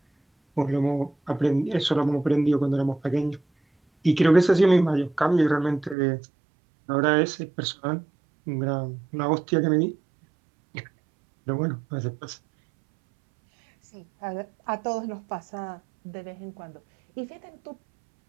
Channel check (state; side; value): drops out; left; at 6.0 s